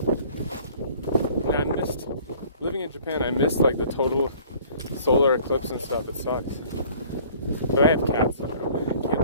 And I missed, living in Japan, I missed like the total solar eclipse and stuff. It sucks. But I have cats, so I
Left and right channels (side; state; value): both; inverted; correlation -0.52